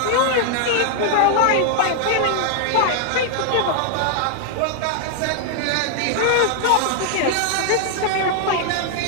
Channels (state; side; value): different; both; correlation 0.00